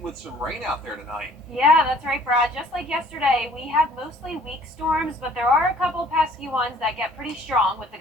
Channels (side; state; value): both; normal; correlation 0.55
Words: with some rain out there tonight. Yeah, that's right, Brad. Just like yesterday, we have mostly weak storms, but there are a couple pesky ones that get pretty strong with the